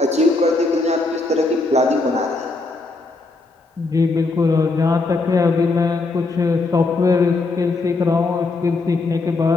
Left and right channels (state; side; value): quieter; right; 3.4 dB